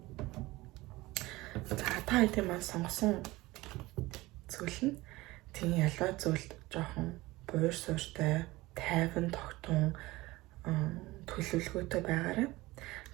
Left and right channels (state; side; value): quieter; left; 19.8 dB